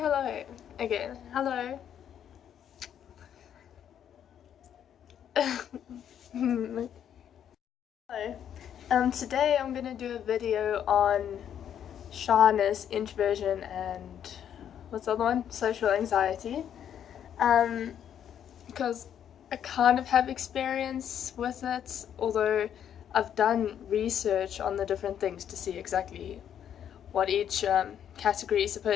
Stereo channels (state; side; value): quieter; right; 9.4 dB